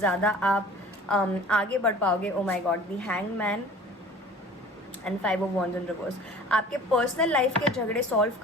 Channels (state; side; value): normal; both; correlation 0.45